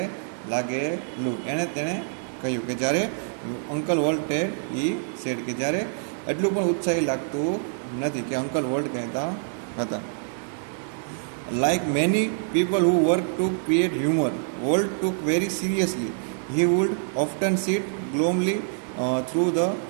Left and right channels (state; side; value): silent; left; 61 dB below the other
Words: લાગેલું. તેણે કહ્યું કે જ્યારે અંકલ વોલ્ટે સેડ કે જ્યારે એટલું પણ ઉત્સાહી લાગતું નથી કે અંકલ વોલ્ટ કહેતા હતા. Like many people who work to create humor, Walt took very seriously. He would often sit glumly through the